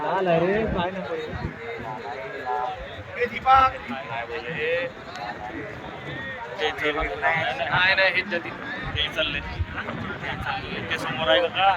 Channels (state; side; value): identical; both; correlation 1.00